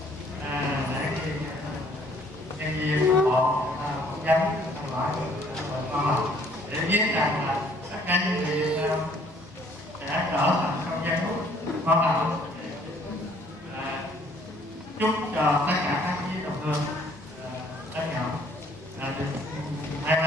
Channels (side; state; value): both; normal; correlation 0.60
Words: để khi nhân viên bộ phỏng vấn hỏi con để biết rằng là tất cả những gì sẽ trở thành không gian hút quan trọng. Chúc cho tất cả các quý đồng hương đã nhận được may